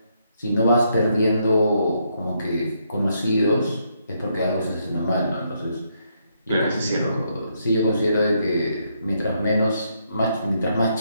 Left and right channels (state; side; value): inverted; both; correlation -0.76